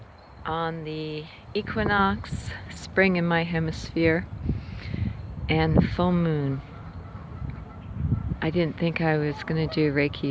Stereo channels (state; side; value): identical; both; correlation 1.00